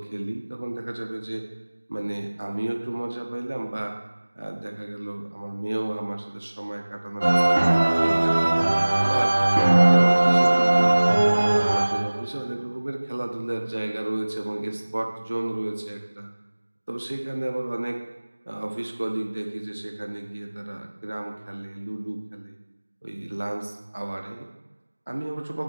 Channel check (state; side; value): inverted; both; correlation -1.00